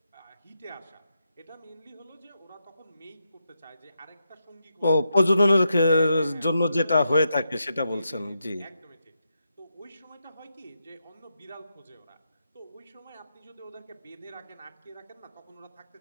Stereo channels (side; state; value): both; inverted; correlation -0.85